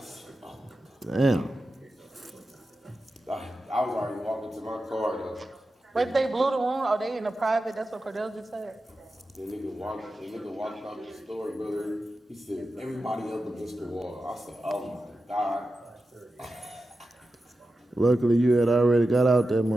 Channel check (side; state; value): both; normal; correlation 0.92